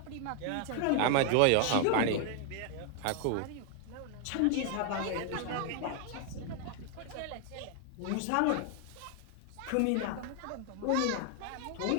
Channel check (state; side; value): different; both; correlation 0.00